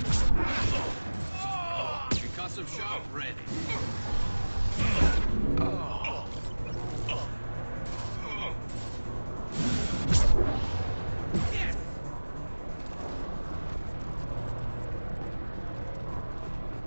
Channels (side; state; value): both; inverted; correlation -1.00